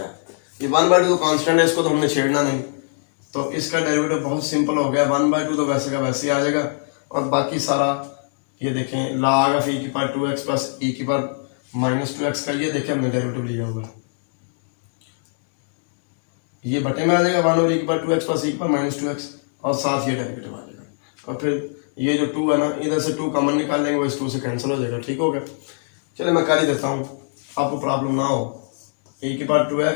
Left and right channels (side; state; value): right; silent; digital silence